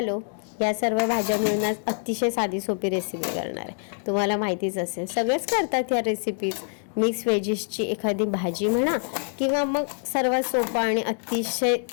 या सर्व भाज्या मिळून आज अतिशय साधी सोपी रेसिपी करणार आहे। तुम्हाला माहितीच असेल, सगळेच करतात ह्या रेसिपीज। मिक्स व्हेजीसची एखादी भाजी म्हणा किंवा मग सर्वात सोपा आणि अतिशय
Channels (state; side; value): silent; right; 61 dB below the other